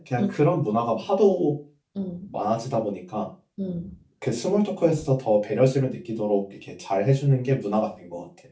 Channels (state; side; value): identical; both; correlation 1.00